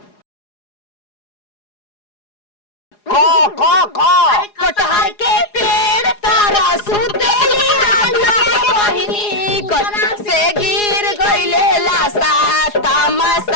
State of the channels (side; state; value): right; late; 4.8 ms